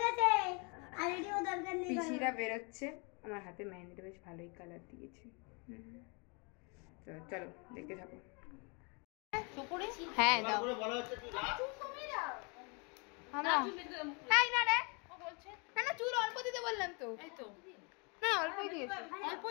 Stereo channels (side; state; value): right; quieter; 33.0 dB